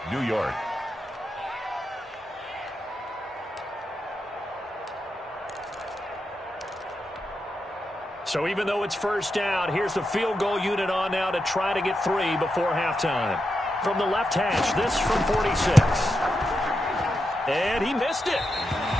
New York. So even though it's first down, here's the field goal unit on now to try to get 3 before halftime. From the left hash, this from 46. And he missed it.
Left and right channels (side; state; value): both; normal; correlation 0.87